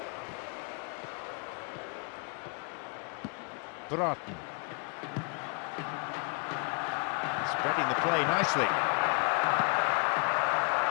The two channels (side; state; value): right; quieter; 35.7 dB